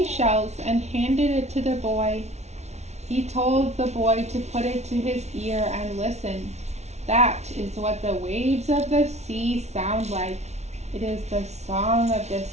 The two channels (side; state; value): left; late; 0.32 ms